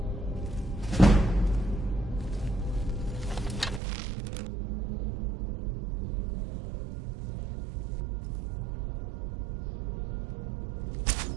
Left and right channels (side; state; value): left; drops out; at 3.8 s